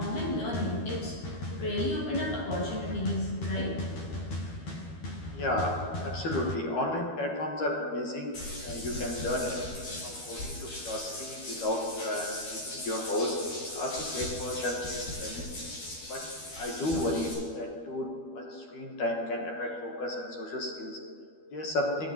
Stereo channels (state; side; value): late; right; 12 ms